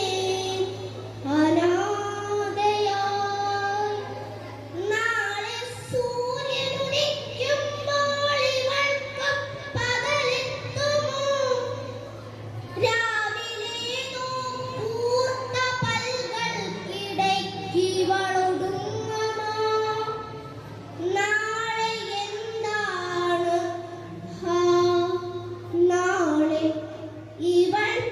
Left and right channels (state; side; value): identical; both; correlation 1.00